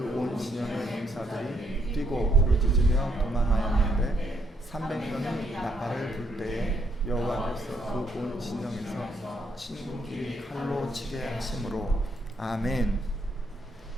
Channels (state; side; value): normal; both; correlation 0.73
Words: 진영의 군사들이 뛰고 부르짖으며 도망하였는데 300명이 나팔을 불 때에 여호와께서 그 온 진영에서 친군끼리 칼로 치게 하심으로. 아멘.